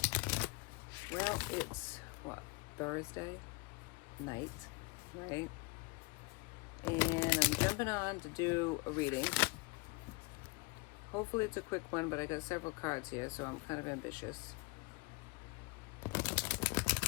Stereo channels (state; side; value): quieter; right; 26.2 dB